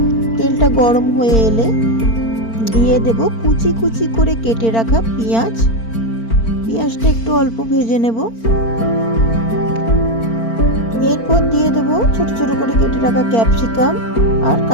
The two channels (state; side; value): late; right; 4.4 ms